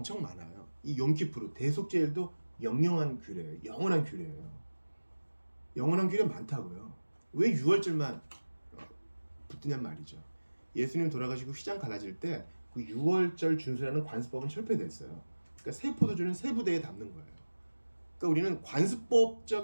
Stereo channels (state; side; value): inverted; both; correlation -1.00